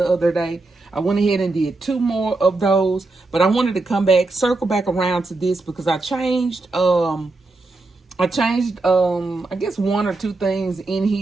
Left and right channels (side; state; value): left; quieter; 3.2 dB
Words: other day. I went ahead and did 2 more of those, but I wanted to come back, circle back around to this because I changed, I guess 1 or 2 things in